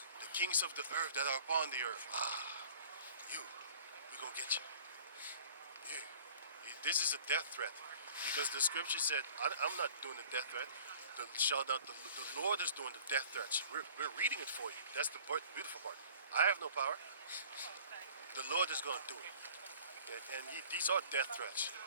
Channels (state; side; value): inverted; both; correlation -0.49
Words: The kings of the earth that are upon the earth. We're gonna get you. Yeah. This is a death threat. Because the scripture said, I'm not doing the death threat. The Lord is doing the death threats. We're reading it for you. That's the beautiful part. I have no power. The Lord is going to do it. And these are death threats.